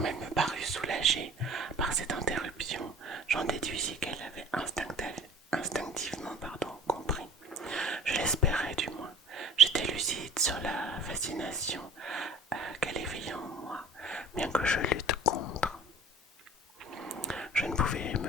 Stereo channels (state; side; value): normal; both; correlation 0.46